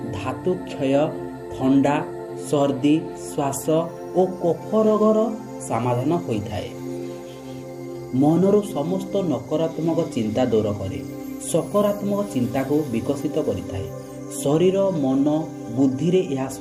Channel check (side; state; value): both; identical; correlation 1.00